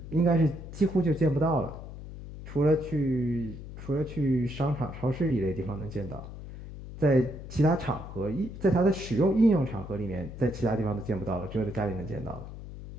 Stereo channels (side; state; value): left; noise; hum, 12 dB below the sound